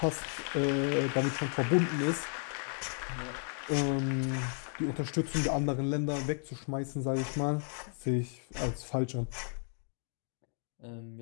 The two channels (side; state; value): right; silent; 55 dB below the other